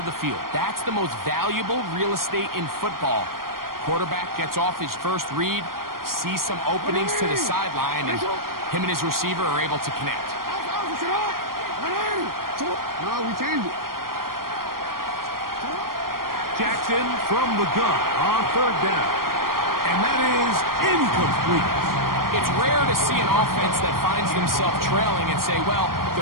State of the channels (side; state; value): left; late; 0.92 ms